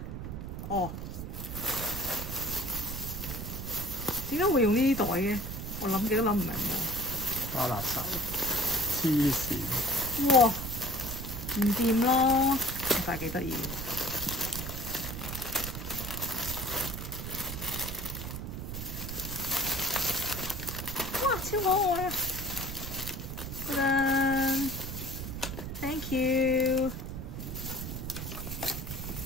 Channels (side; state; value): right; noise; rumble, 6 dB below the sound